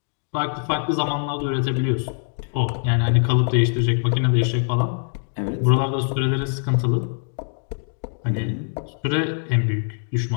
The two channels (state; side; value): silent; right; 63 dB below the other